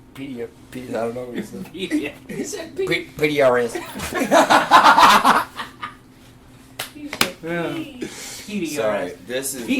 I don't know what he said. Yeah. He said P. PDRS. He said P. PDRS. Sorry, this is.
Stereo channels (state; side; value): identical; both; correlation 1.00